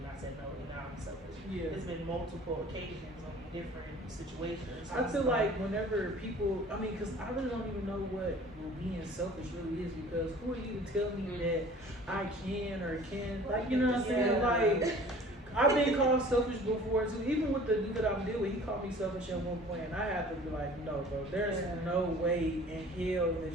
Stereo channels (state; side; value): normal; both; correlation 0.48